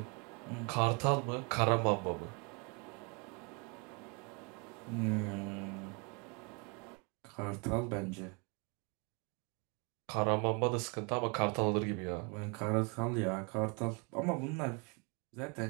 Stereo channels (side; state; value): left; quieter; 33.5 dB